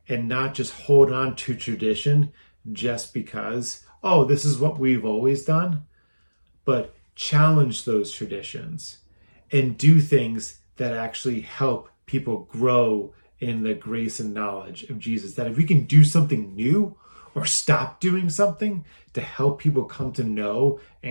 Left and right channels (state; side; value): inverted; both; correlation -1.00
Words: and not just hold on to tradition just because, oh, this is what we've always done, but challenge those traditions and do things that actually help people grow in the grace and knowledge of Jesus. That if we can do something new or stop doing something to help people come to know